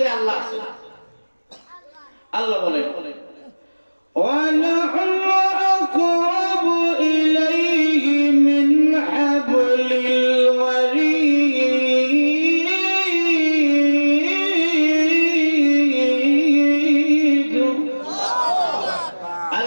আল্লাহ আছে। আল্লাহ বলেন وَنَحْنُ أَقْرَبُ إِلَيْهِ مِنْ حَبْلِ الْوَرِيدِ।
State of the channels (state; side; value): inverted; both; correlation -1.00